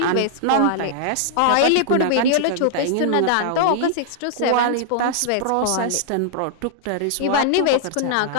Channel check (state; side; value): different; both; correlation -0.01